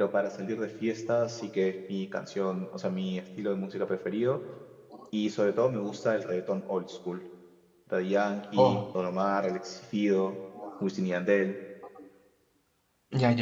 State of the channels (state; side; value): identical; both; correlation 1.00